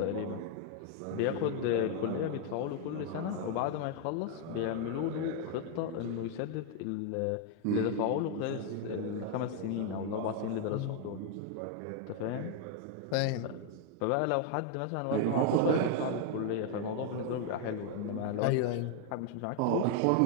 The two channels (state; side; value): different; both; correlation 0.00